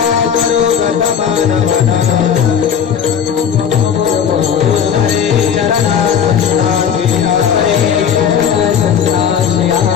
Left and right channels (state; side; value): quieter; right; 7.9 dB